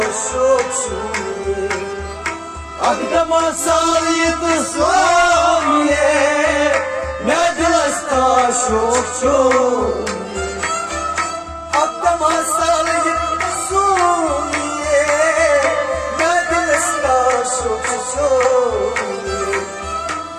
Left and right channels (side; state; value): both; identical; correlation 1.00